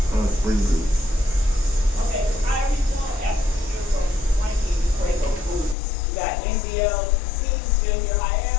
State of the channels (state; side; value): drops out; right; at 5.8 s